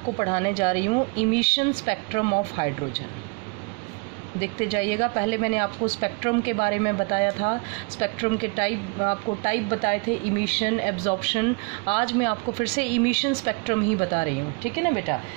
पढ़ाने जा रही हूँ इमिशन स्पेक्ट्रम ऑफ हाइड्रोजन। देखते जाइएगा। पहले मैंने आपको स्पेक्ट्रम के बारे में बताया था, स्पेक्ट्रम के टाइप बताए थे, इमिशन, एब्जॉर्प्शन। आज मैं आपको फिर से इमिशन स्पेक्ट्रम ही बता रही हूँ, ठीक है ना बेटा।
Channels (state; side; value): quieter; left; 30.8 dB